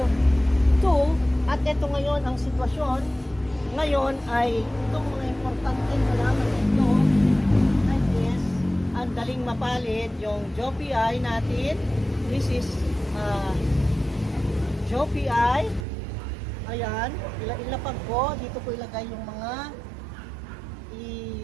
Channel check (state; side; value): drops out; left; at 15.9 s